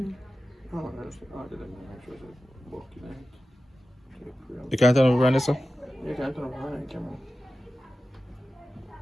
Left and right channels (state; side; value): normal; both; correlation 0.94